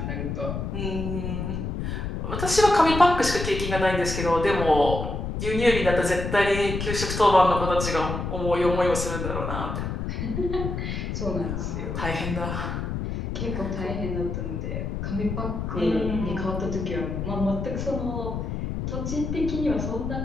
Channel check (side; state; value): left; noise; rumble, 4 dB below the sound